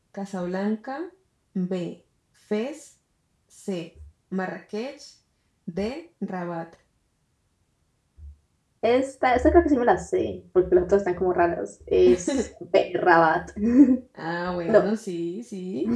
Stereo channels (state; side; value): identical; both; correlation 1.00